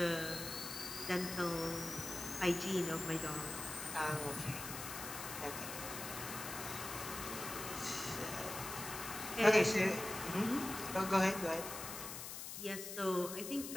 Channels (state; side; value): noise; left; hiss, 7 dB below the sound